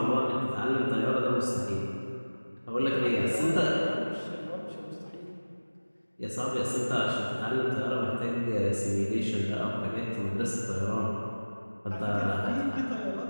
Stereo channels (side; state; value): both; inverted; correlation -1.00